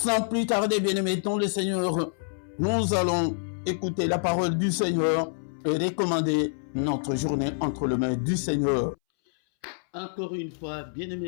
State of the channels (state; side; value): silent; right; 60 dB below the other